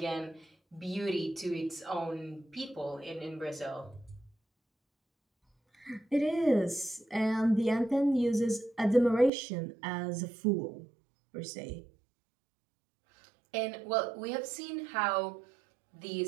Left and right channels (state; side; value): drops out; left; at 9.3 s